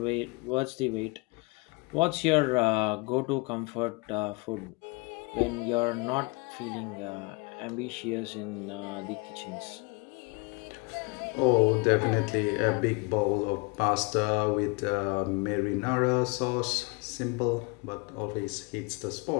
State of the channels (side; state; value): right; quieter; 29.1 dB